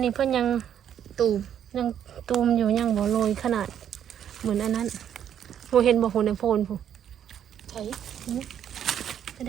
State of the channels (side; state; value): left; quieter; 9.5 dB